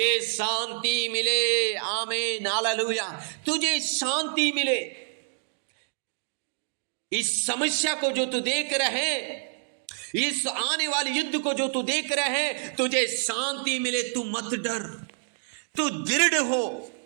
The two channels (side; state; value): left; silent; digital silence